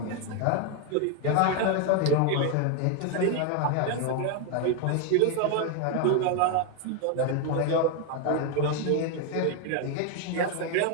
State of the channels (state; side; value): different; both; correlation 0.01